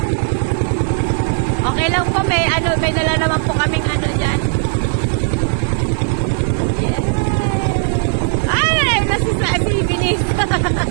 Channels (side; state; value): left; silent; 67 dB below the other